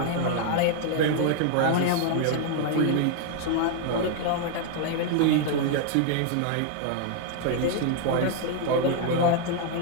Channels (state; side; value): different; both; correlation 0.00